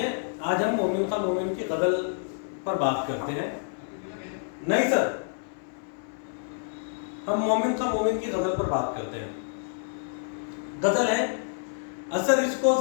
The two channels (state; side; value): silent; right; 59 dB below the other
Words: آج ہم مومن کا مومن کی غزل پر بات کرتے ہیں۔ نہیں سر، ہم مومن کا مومن کی غزل پر بات کرتے ہیں۔ غزل ہے: اثر اس کو